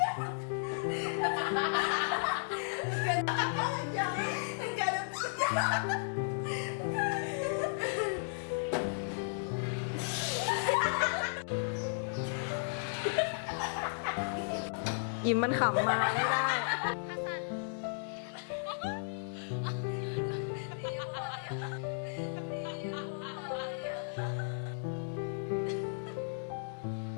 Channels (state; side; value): silent; right; digital silence